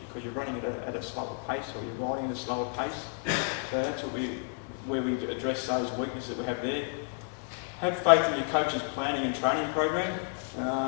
because you're running at a slower pace, or you're riding at a slower pace. So that's where we address those weaknesses that we have there. Have faith in your coach's planning and training program.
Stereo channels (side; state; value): right; silent; 57 dB below the other